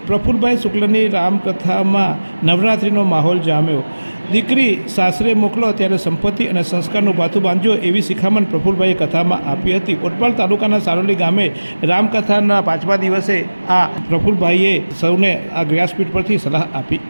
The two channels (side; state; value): both; inverted; correlation -1.00